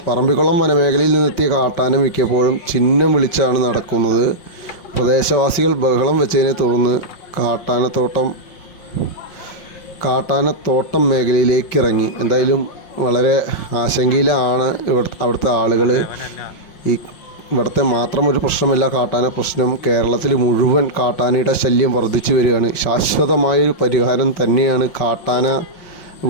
പറമ്പിക്കുളം വനമേഖലയിൽ നിന്നെത്തിയ കാട്ടാന മിക്കപ്പോഴും ചിഹ്നം വിളിച്ചാണ് നടക്കുന്നത്. പ്രദേശവാസികൾ ബഹളം വെച്ചതിനെ തുടർന്ന് കാട്ടാനത്തോട്ടം മേഖലയിലേക്ക് ഇറങ്ങി. എന്തായാലും വളരെ ആശങ്കയിലാണ് അവിടുത്തെ ആളുകൾ. ഇവിടുത്തെ മാത്രം ഒരു പ്രശ്നമല്ല കാട്ടാന പ്രശ്നം, കേരളത്തിൽ മുഴുവൻ കാട്ടാനയുടെ ശല്യം വർദ്ധിച്ചു വരികയാണ്. ശാശ്വതമായൊരു പരിഹാരം തന്നെയാണ് കാട്ടാന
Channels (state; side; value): late; right; 5.6 ms